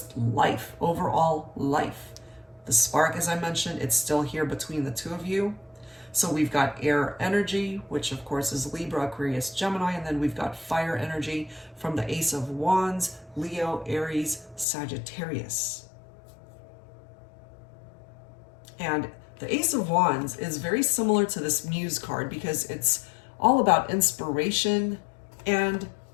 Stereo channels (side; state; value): right; drops out; at 14.7 s